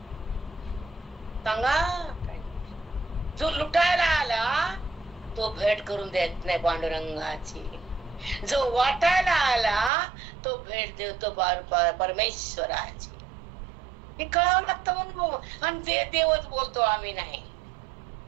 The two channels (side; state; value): left; drops out; at 9.9 s